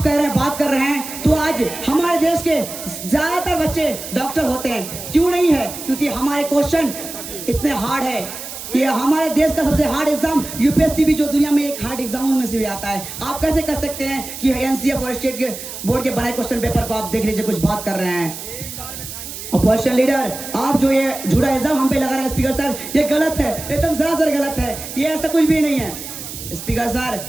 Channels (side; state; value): right; noise; hiss, 10 dB below the sound